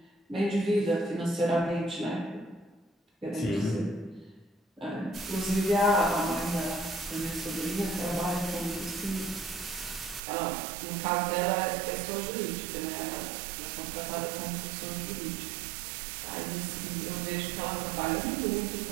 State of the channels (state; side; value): drops out; left; at 10.2 s